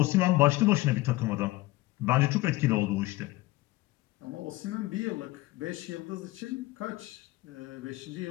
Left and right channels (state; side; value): quieter; right; 19.2 dB